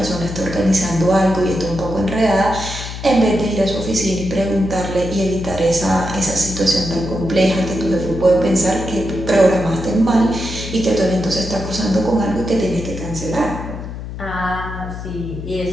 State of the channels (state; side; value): noise; left; hum, 9 dB below the sound